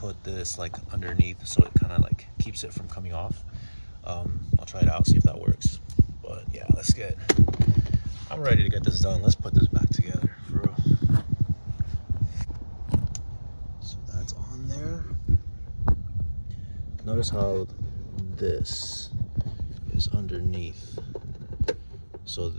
this like underneath so it kind of like keeps it from coming off. I'll try it out, see if that works. But yeah, I'm ready to get this done. Let's put this back together for real. So that's on there. Notice how this is underneath. So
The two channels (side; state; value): both; inverted; correlation -1.00